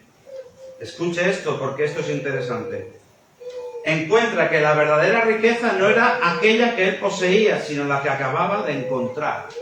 escuche esto porque esto es interesante. Encuentra que la verdadera riqueza no era aquella que él poseía, sino la que acababa de encontrar.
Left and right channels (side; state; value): both; identical; correlation 1.00